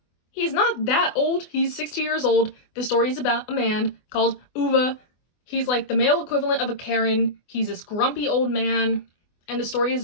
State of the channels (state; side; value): late; right; 24 ms